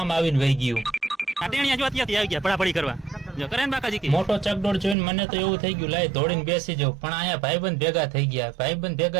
આવીને વહી ગયું। મોટો ચકડોળ જોઈને મને તો એવું થઈ ગયું લાય દોડીને બેસી જાવ, પણ અહીંયા ભાઈબંધ ભેગા થઈ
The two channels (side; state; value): left; drops out; at 5.0 s